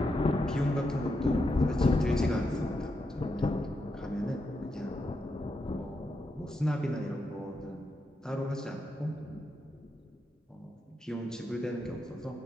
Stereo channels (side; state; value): both; normal; correlation 0.84